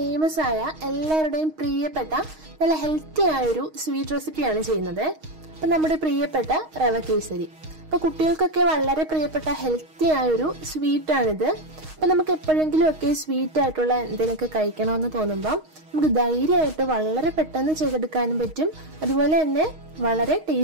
ആയ എല്ലാവരുടെയും പ്രിയപ്പെട്ട നല്ല ഹെൽത്തി ആയ ഒരു സ്വീറ്റ് റെസിപ്പിയാണ് ചെയ്യുന്നത്. അപ്പോൾ നമ്മുടെ പ്രിയപ്പെട്ട റവ കേസരി. അപ്പോൾ കുട്ടികൾക്കൊക്കെ വളരെ പ്രിയപ്പെട്ട ഹെൽത്തി ആയ ഒരു സ്വീറ്റ് ആണിത്. അപ്പോൾ നമുക്ക് എപ്പോഴെങ്കിലും ഒക്കെ സ്വീറ്റ് ആയിട്ടുള്ള എന്തെങ്കിലുമൊക്കെ കഴിക്കണമെന്ന് തോന്നുമ്പോൾ നമുക്ക് ധൈര്യമായിട്ട് വളരെ പെട്ടെന്ന് ചെയ്തെടുക്കാനും പറ്റും. അതുപോലെ തന്നെ വളരെ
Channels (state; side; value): late; left; 6.4 ms